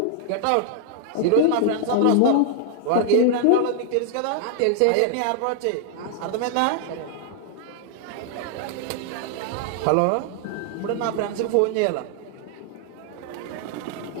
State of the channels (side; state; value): both; different; correlation -0.01